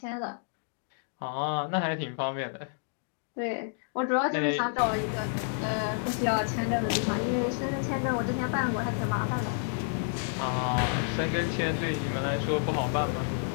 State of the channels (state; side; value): silent; right; digital silence